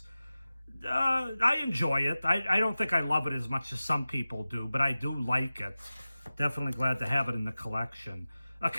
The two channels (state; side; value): inverted; both; correlation -0.96